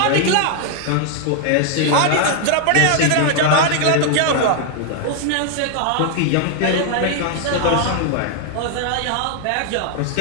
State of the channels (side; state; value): both; different; correlation 0.00